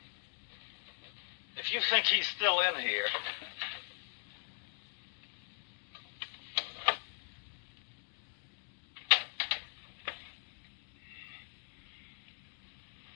If you think he's still in here...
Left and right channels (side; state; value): right; silent; digital silence